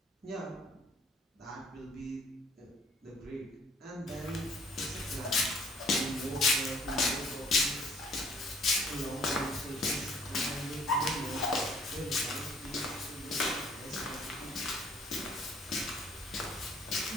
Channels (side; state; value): both; normal; correlation 0.58